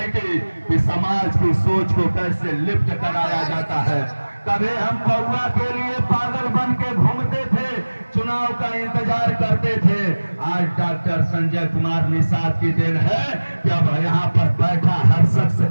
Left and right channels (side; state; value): both; inverted; correlation -1.00